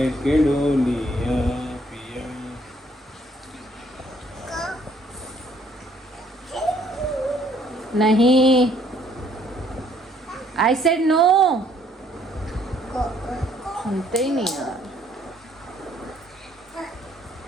डोलिया पिया। नहीं, आई सेड नो। सुनते ही नहीं यार।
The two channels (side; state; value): both; normal; correlation 0.64